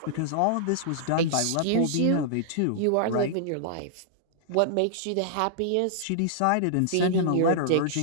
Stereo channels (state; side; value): different; both; correlation -0.01